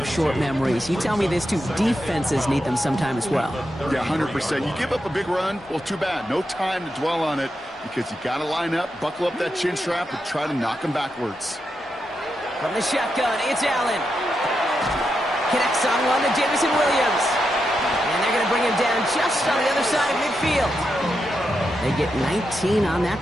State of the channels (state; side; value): normal; both; correlation 0.86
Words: short memories. You tell me this, too. Defenses need them sometime as well. Yeah, 100%. You give up a big run, well, too bad. No time to dwell on it because you got to line up, buckle up that chin strap, and try to knock them backwards. From the shotgun, it's Allen. Connects on one to Jamison Williams. And they're going to bring him down just on the other side of midfield. They get 19 on